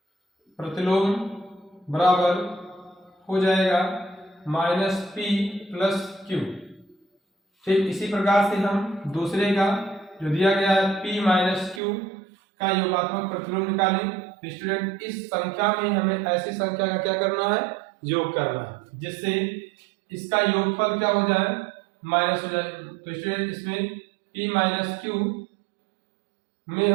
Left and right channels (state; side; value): drops out; left; at 11.8 s